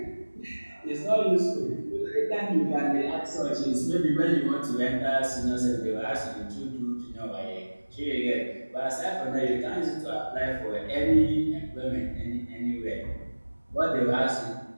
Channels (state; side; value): inverted; both; correlation -1.00